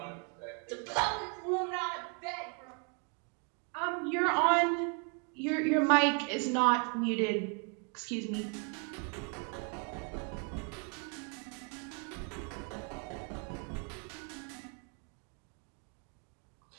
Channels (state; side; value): quieter; left; 37.9 dB